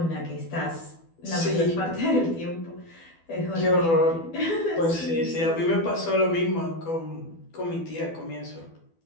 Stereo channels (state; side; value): late; right; 12 ms